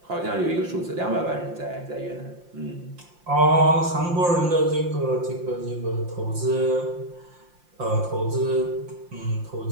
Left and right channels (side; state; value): left; late; 5.7 ms